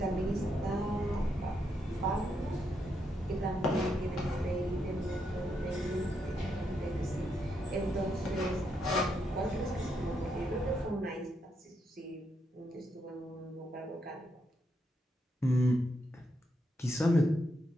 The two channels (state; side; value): normal; both; correlation 0.80